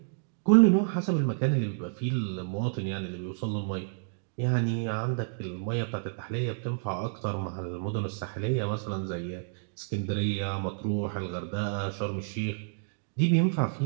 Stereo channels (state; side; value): silent; left; digital silence